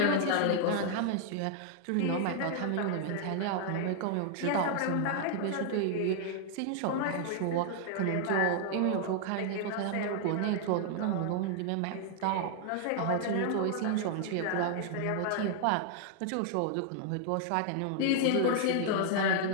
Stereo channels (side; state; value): both; different; correlation 0.00